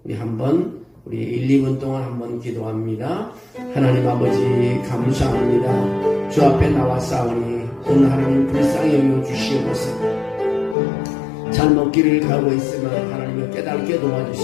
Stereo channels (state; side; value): drops out; right; at 10.8 s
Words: 우리 한번 우리 1, 2분 동안 한번 기도합니다. 하나님 아버지 감사합니다. 주 앞에 나와싸우니 오늘 하나님 불쌍히 여겨주시옵소서. 잘못 길을 가고 있으면 하나님을 깨닫게